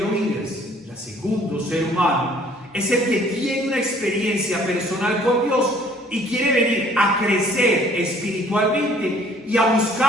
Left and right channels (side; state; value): both; normal; correlation 0.57